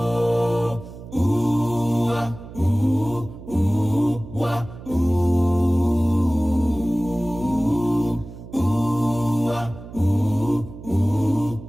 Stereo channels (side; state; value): right; noise; hum, 15 dB below the sound